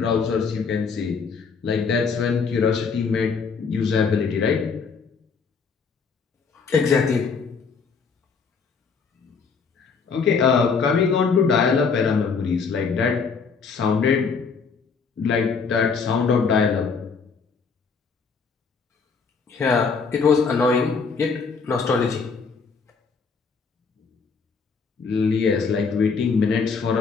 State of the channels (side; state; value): right; quieter; 5.3 dB